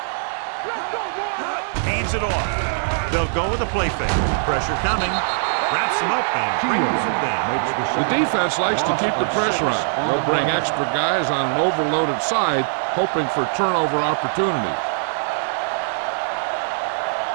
Let's go, boy. Hands it off. They'll go with a play fake. Pressure coming. Wraps him up and brings him down. The defense likes to keep the pressure on. They'll bring extra guys on an overloaded side, hoping for turnover opportunities.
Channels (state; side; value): silent; left; digital silence